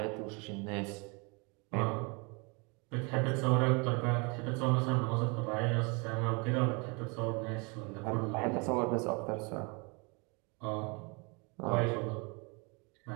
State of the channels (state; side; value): quieter; left; 31.3 dB